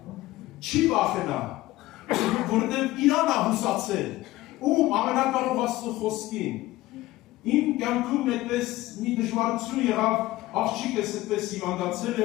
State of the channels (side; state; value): right; quieter; 17.4 dB